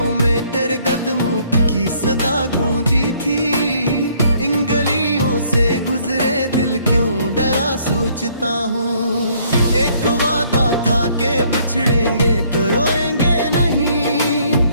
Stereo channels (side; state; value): both; inverted; correlation -0.64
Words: में तेरे कदमों की सदा गूंजी थी, इन गलियों से गुजरे दिल क्यों डरा सोचता हूँ। एक वादा था के बिछड़ेंगे तो रोएंगे नहीं,